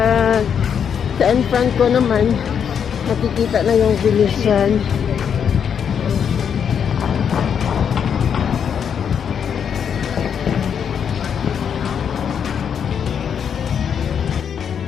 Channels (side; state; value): right; quieter; 7.7 dB